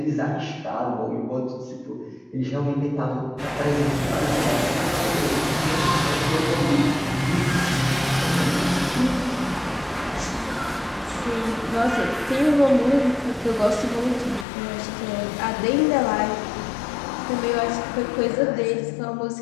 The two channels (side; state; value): right; drops out; at 14.5 s